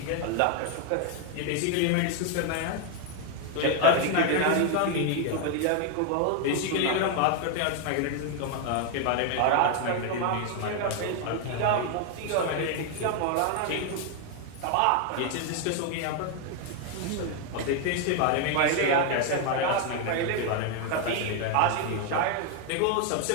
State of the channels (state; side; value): different; both; correlation 0.01